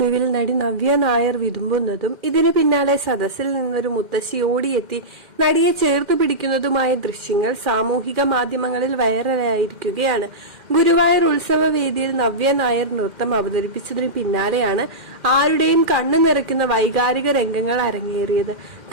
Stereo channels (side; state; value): left; late; 2.1 ms